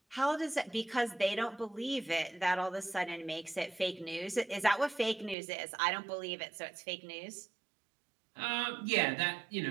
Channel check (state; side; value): drops out; left; at 5.4 s